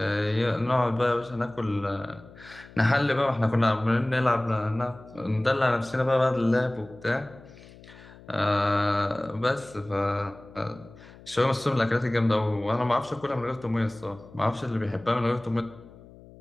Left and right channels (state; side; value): noise; left; hum, 21 dB below the sound